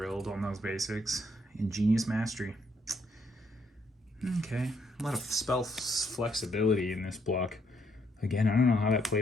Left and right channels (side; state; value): both; normal; correlation 0.72